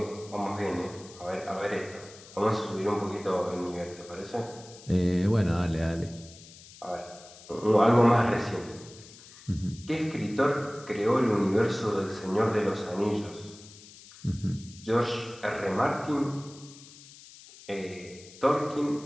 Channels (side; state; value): left; noise; hiss, 20 dB below the sound